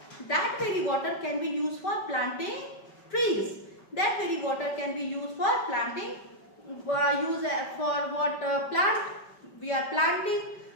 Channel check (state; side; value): late; right; 5.2 ms